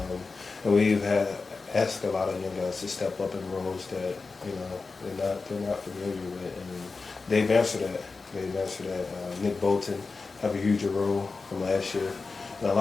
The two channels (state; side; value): quieter; right; 4.2 dB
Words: we've had asked a lot of young guys to step up in roles that they're not familiar with, and they've answered that. Nick Bolton have a huge role from last year, and a